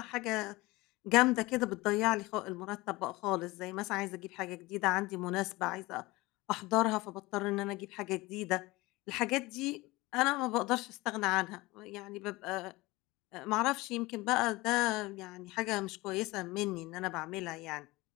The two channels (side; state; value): right; quieter; 21.3 dB